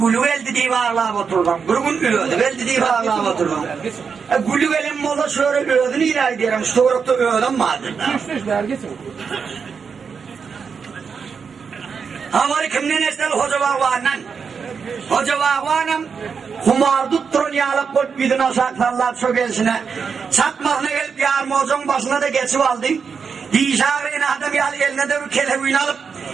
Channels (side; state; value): left; quieter; 6.0 dB